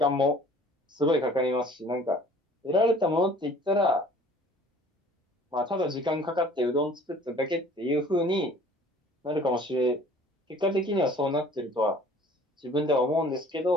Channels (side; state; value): both; normal; correlation 0.51